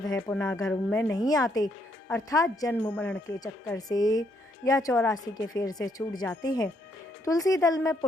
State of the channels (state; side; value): normal; both; correlation 0.73